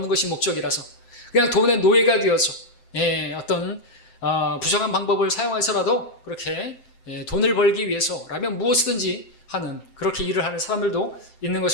것이 목적이라서 그냥 돈의 노예가 되어서 어떤 부정한 방법을 사용해서라도 그렇게 돈을 벌기 위해서라면 무엇이든지 하는 그렇게 일을 하는 사람들도 있는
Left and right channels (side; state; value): right; late; 7.7 ms